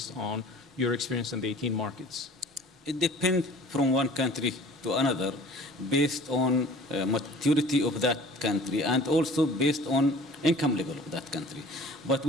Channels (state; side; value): normal; both; correlation 0.47